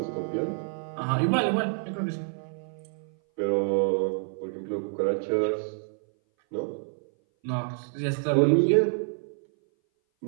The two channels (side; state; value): left; silent; 58 dB below the other